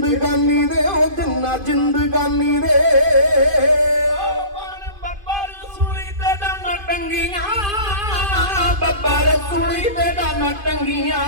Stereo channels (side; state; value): left; late; 2.5 ms